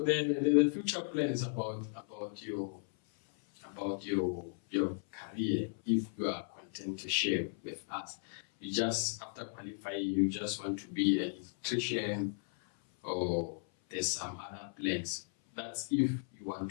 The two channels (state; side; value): silent; right; 54 dB below the other